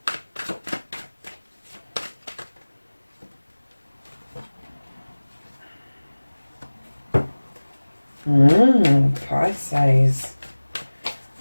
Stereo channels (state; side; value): inverted; both; correlation -1.00